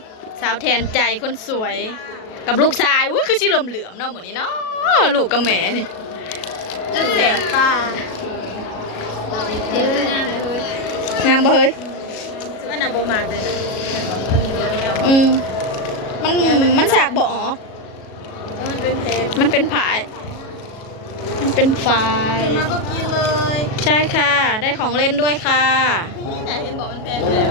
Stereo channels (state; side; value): late; right; 37 ms